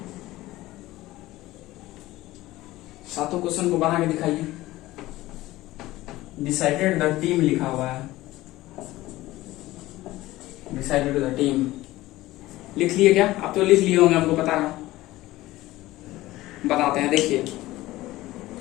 सातों क्वेश्चन को बना के दिखाइए। डिसाइडेड द टीम लिखा हुआ है, डिसाइडेड द टीम लिख लिए क्या? आप तो लिख लिए होंगे, हमको पता है। बताते हैं, देखिए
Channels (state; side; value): quieter; right; 17.4 dB